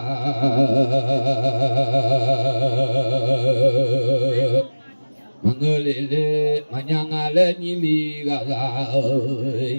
mà ngơ lê lê mà nhang à lê ni li ga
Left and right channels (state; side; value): inverted; both; correlation -1.00